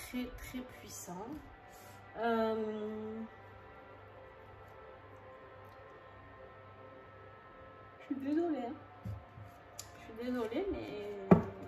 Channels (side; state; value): both; identical; correlation 1.00